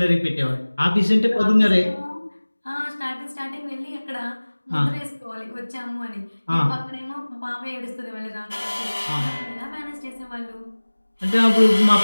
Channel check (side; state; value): both; inverted; correlation -1.00